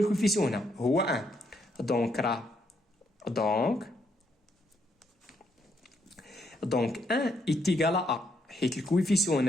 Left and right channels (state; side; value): normal; both; correlation 0.74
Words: هنا هو 1 دونك 1 ايتيغال ا حيت الكويفيسيون